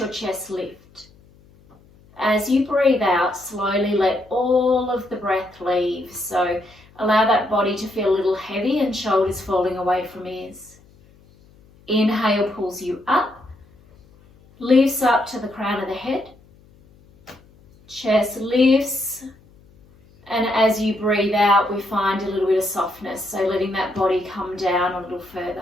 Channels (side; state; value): left; noise; hum, 28 dB below the sound